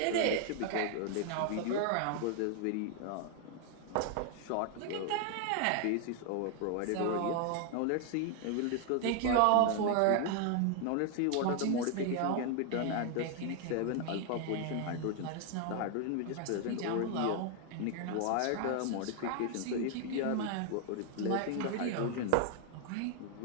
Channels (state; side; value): different; both; correlation 0.00